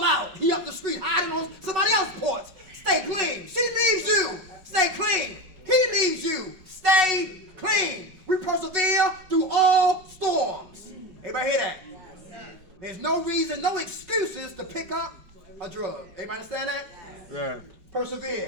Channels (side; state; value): left; late; 5.3 ms